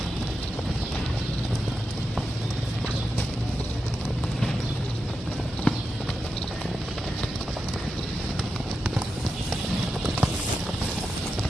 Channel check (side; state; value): both; normal; correlation 0.89